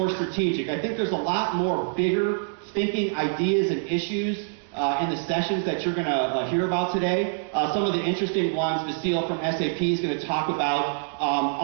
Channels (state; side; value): silent; left; digital silence